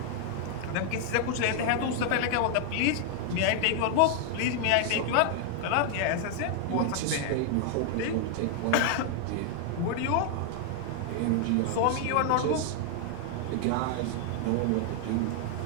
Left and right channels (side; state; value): both; different; correlation 0.00